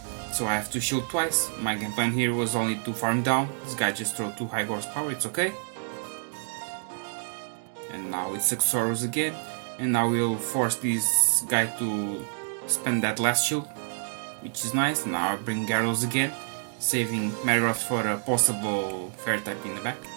so I have to shield twice. My game plan here was only to farm down. This guy just throw 2 high horse power, it's okay. And now it's Haxorus again, and now we'll force this guy to spend that last shield, which is nice. Now I'll bring Gyarados again, saving Metagross for a possible fairy type in the back.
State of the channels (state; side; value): silent; left; digital silence